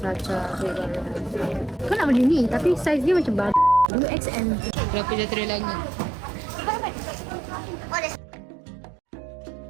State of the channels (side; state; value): left; drops out; at 3.9 s